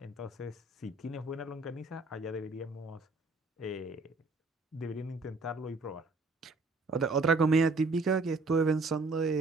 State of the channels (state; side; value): quieter; left; 3.3 dB